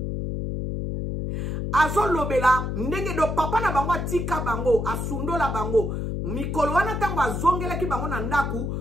azolo bela ndenge do papa na bango atika bango asundola bango mikolo wana tango azongela ki bango na ndaku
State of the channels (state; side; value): noise; left; hum, 2 dB below the sound